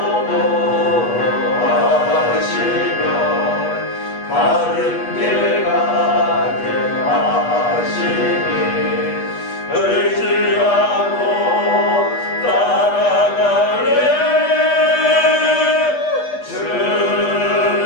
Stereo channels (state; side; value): late; right; 8.3 ms